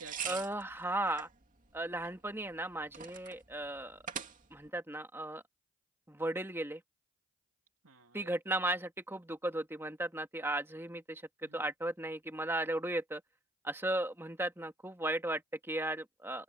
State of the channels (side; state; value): both; normal; correlation 0.62